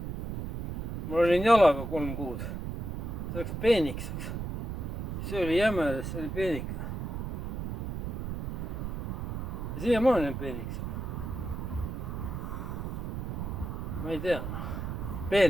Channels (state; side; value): noise; right; rumble, 5 dB below the sound